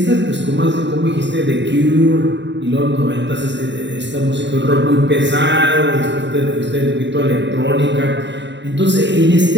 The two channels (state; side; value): late; left; 0.52 ms